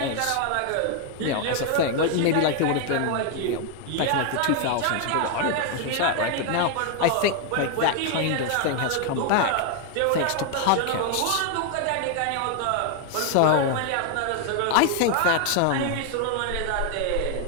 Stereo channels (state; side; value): different; both; correlation 0.00